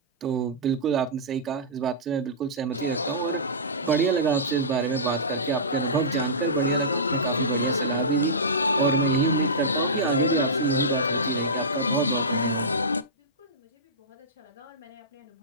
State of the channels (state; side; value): normal; both; correlation -0.18